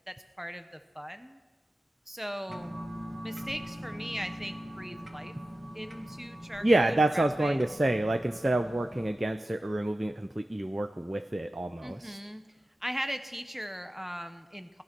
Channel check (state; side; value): normal; both; correlation 0.95